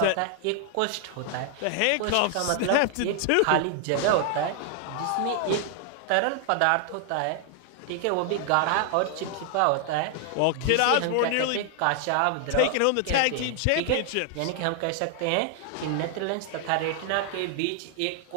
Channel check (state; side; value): different; both; correlation 0.00